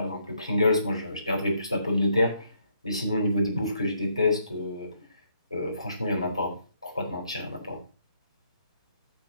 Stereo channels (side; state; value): both; inverted; correlation -0.72